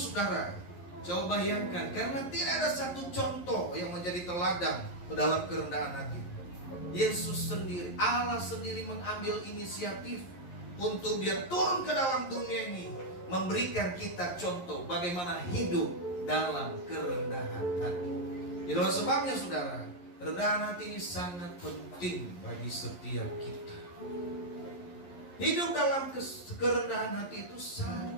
coba bayangkan, karena tidak ada satu contoh yang menjadi teladan dalam kerendahan hati. Yesus sendiri, Allah sendiri mengambil inisiatif untuk dia turun ke dalam dunia ini, memberikan kita contoh bagaimana hidup dalam kerendahan hati. Itulah sebabnya saudara, kerendahan hati ini sangat penting bagi setiap kita. Hidup dalam kerendahan hati itu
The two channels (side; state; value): right; late; 11 ms